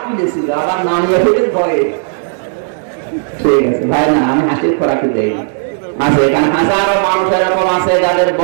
তুলেছিল, আবার নামিয়ে ফেলে ভয়ে। ঠিক আছে ভাই, না আমি হাসির খোরাকি দেই আছে। এখানে হাজারো মানুষ এরকম আছে যাদের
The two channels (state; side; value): silent; left; digital silence